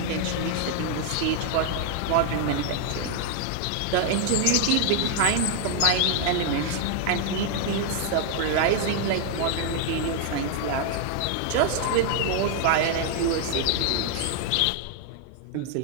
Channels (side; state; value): both; different; correlation 0.00